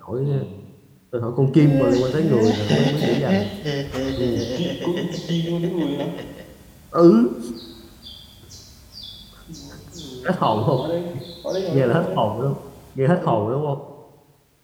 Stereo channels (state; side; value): identical; both; correlation 1.00